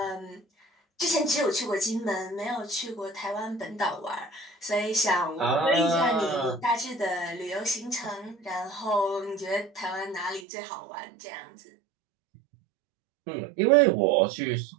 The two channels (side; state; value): left; drops out; at 10.5 s